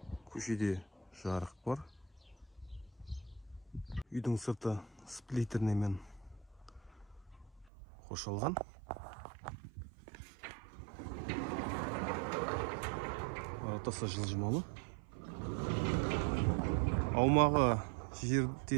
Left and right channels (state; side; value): drops out; left; at 7.7 s